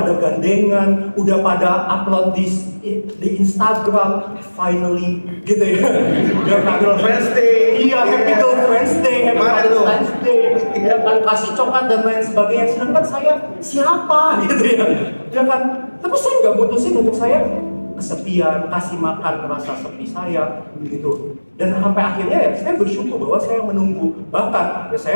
gandengan, udah pada upload di Instagram, finally gitu ya. Ya Happy Girlfriend's Day. Iya, Happy Girlfriend's Day, Happy Valentine's Day, ya kan kasih coklat dan lain sebagainya. Sedangkan saya siapa gitu ya, ya kan. Tapi saya nggak mutusin untuk saya kesepian, kasih makan rasa sepi saya gitu. Dan sampai akhirnya ya saya bersyukur bahwa saya menunggu. Bahkan ya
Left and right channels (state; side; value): inverted; both; correlation -1.00